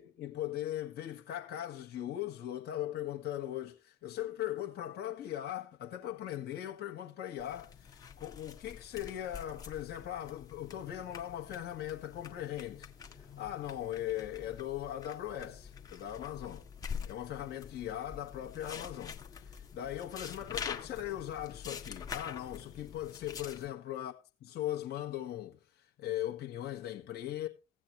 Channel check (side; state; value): right; quieter; 11.0 dB